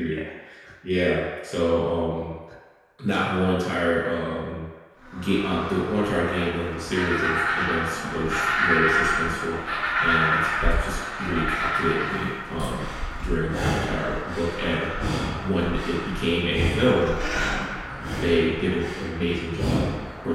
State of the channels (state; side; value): identical; both; correlation 1.00